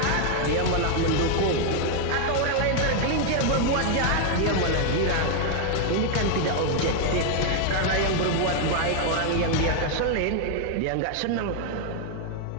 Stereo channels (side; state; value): both; different; correlation 0.00